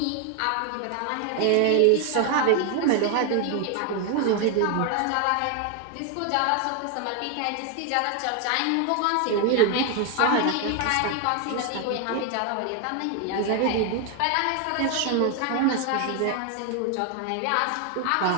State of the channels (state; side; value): different; both; correlation 0.01